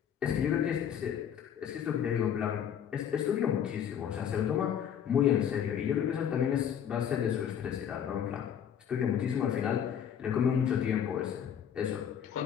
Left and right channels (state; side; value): quieter; right; 8.9 dB